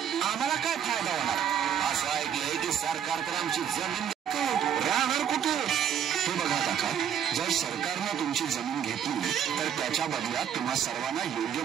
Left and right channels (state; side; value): quieter; left; 8.8 dB